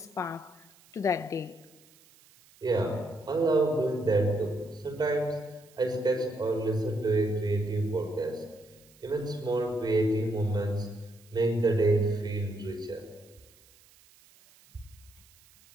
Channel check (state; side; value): noise; right; hiss, 28 dB below the sound